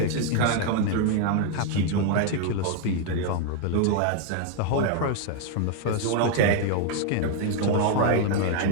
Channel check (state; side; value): different; both; correlation 0.00